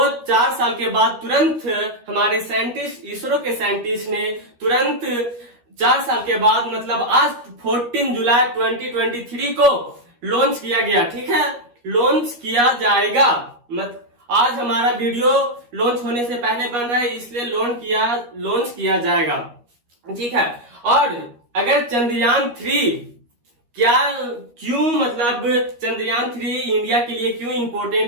4 साल के बाद तुरंत हमारे साइंटिस्ट, इसरो के साइंटिस्ट ने तुरंत 4 साल के बाद मतलब आज 14 जुलाई 2023 को लॉन्च किया गया, ठीक है, लॉन्च किया जाएगा। आज हमारा वीडियो लॉन्च होने से पहले बन रहा है, इसलिए लॉन्च किया जाएगा, ठीक है। और अगर चंद्रयान 3 क्यों मतलब चंद्रयान 3 इंडिया के लिए क्यों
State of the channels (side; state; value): left; late; 13 ms